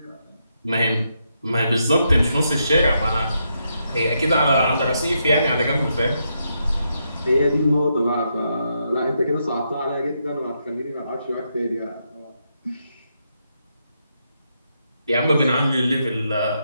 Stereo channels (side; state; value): both; inverted; correlation -0.80